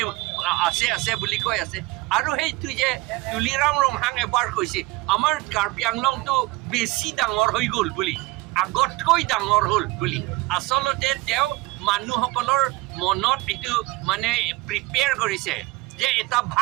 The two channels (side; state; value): left; quieter; 21.0 dB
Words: বুলি কৈ আছে আৰু সেইটো যে তুলিৰাম ৰংহাং এবাৰ কৈছে আমাৰ কাৰ্বি আংলংটো বেছি ডাঙৰ হৈ গ'ল বুলি আগতকৈ ডাঙৰ হ'ল বুলি আচলতে তেওঁ মানুহসকলৰ মনত এইটো মানে প্ৰিপেয়াৰ কৰিছে যে এটা